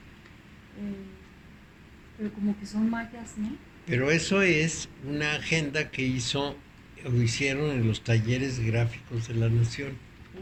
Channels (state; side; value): identical; both; correlation 1.00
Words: Pero como que son mayas, ¿no? pero eso es una agenda que hicieron en los talleres gráficos de la Nación.